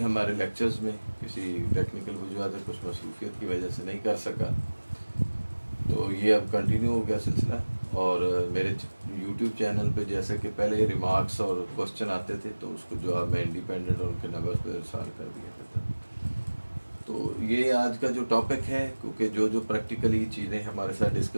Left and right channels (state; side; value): inverted; both; correlation -1.00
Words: हमारे लेक्चर्स में, किसी टेक्निकल वजूहत कुछ मसरूफियत की वजह से नहीं कर सका, तो ये अब कंटिन्यू हो गया सिलसिला। और मेरे यूट्यूब चैनल पे जैसे कि पहले रिमार्क्स और क्वेश्चन आते थे तो उसको जवाब मैं इंडिपेंडेंट और उनके नंबर्स पे इरसाल कर दिया करता। तो ये आज का जो टॉपिक है, क्योंकि जो प्रैक्टिकली चीज़ें हमारे साथ